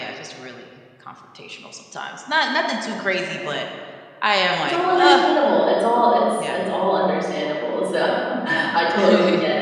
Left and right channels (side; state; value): both; identical; correlation 1.00